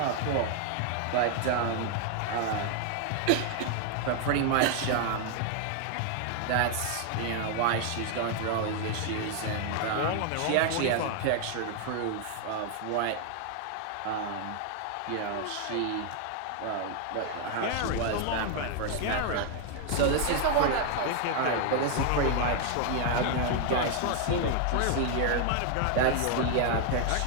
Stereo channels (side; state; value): both; different; correlation 0.00